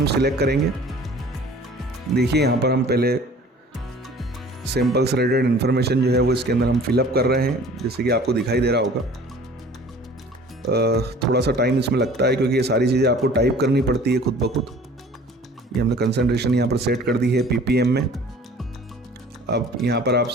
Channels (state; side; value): normal; both; correlation 0.48